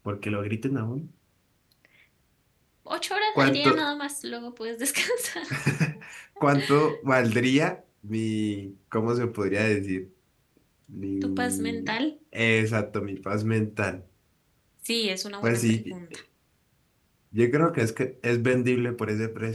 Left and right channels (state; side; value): identical; both; correlation 1.00